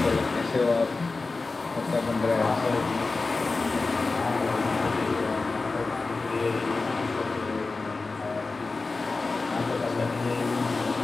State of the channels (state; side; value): quieter; right; 3.8 dB